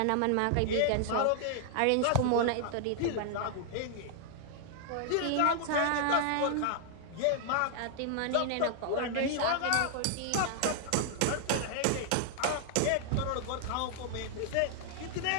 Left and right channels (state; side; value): different; both; correlation -0.01